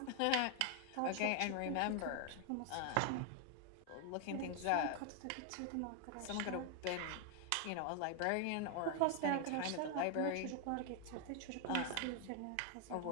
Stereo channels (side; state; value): both; different; correlation 0.00